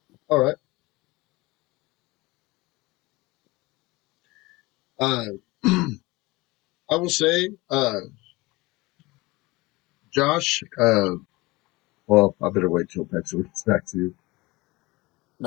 All right. I will say, Josh. Well, I better wait till Pexor gets back to you.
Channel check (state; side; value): quieter; right; 22.3 dB